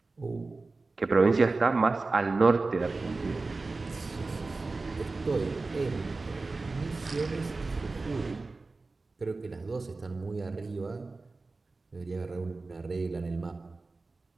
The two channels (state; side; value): quieter; left; 3.6 dB